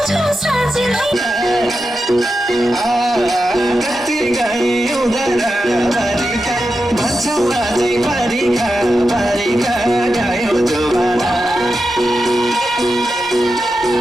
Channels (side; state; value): both; normal; correlation 0.89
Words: छ साँझलाई कति गए उधारा बारीका भन्छौ अझै बारीका बारीका गयो जोबाना